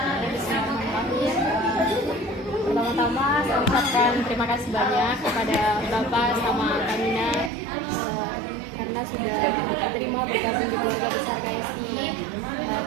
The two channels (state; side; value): drops out; left; at 7.5 s